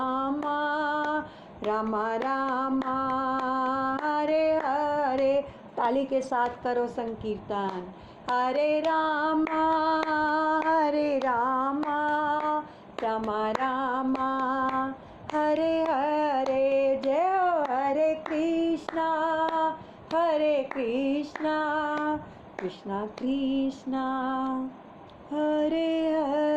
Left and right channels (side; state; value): both; identical; correlation 1.00